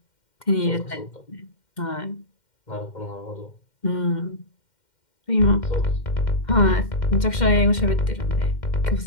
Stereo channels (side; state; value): right; late; 2.1 ms